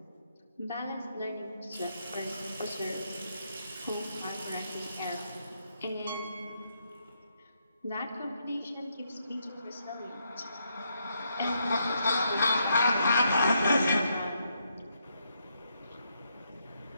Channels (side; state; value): both; inverted; correlation -0.77